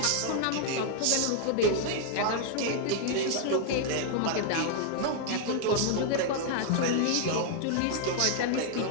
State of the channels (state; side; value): different; both; correlation 0.00